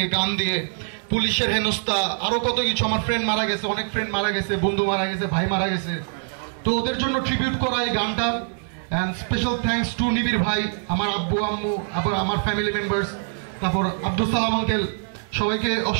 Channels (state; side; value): silent; left; digital silence